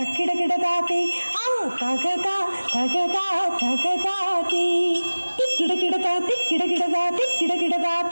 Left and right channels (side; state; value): both; inverted; correlation -1.00